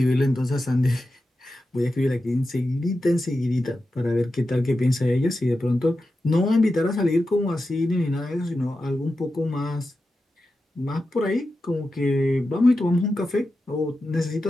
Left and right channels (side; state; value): both; normal; correlation 0.91